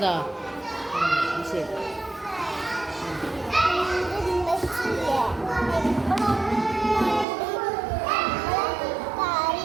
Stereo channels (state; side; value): drops out; left; at 7.2 s